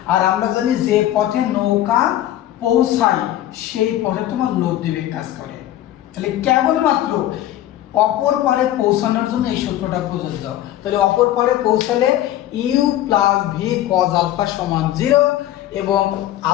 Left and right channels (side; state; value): right; quieter; 13.2 dB